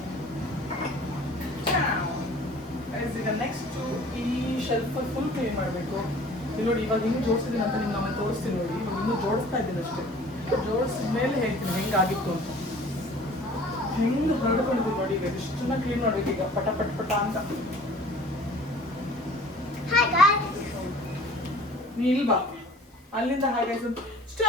ಈಗ ನೆಕ್ಸ್ಟ್ ಈ ಶೆಲ್ಫ್ ಫುಲ್ ಕ್ಲೀನ್ ಮಾಡಬೇಕು ಇಲ್ಲಿ ನೋಡಿ ಇವಾಗ ಇನ್ನೂ ಜೋಡಿಸಿದ್ದೀನಿ ಅಂತ ನಿಮ್ಗೆ ನಾನು ತೋರಿಸ್ತೀನಿ ನೋಡಿ ಇವಾಗ ಇನ್ನೂ ಜೋಡಿಸ್ತಾ ಇದ್ದೀನಿ ಅಷ್ಟೇ ಜೋಡಿಸಿದ ಮೇಲೆ ಹೇಳ್ತೀನಿ ಹೆಂಗಾಗಿತ್ತು ಅಂತ ಹೆಂಗೆ ಹರಡ್ಕೊಂಡಿದ್ದೀನಿ ನೋಡಿ ಈಗ ಇಷ್ಟನ್ನ ಕ್ಲೀನ್ ಮಾಡ್ಬೇಕು ಈಗ ಪಟ ಪಟ ಪಟ ಅಂತ ನೀ ಇಲ್ವಾ ಅಲ್ಲಿಂದ ಹಾಗೆ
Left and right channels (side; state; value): both; normal; correlation 0.48